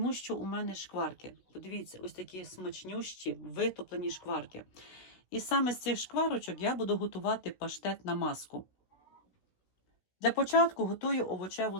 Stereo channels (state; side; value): late; right; 16 ms